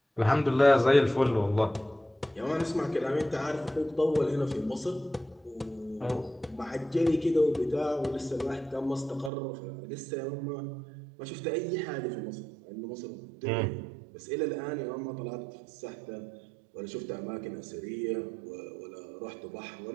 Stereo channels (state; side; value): drops out; left; at 9.3 s